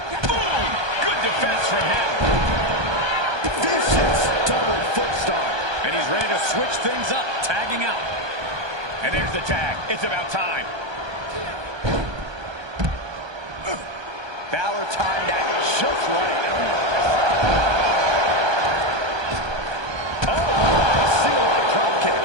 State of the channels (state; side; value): late; left; 1.2 ms